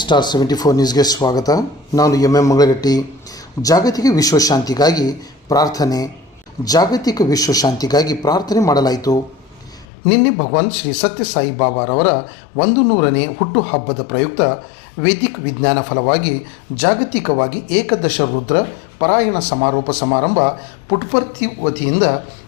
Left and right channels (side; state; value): right; drops out; at 9.9 s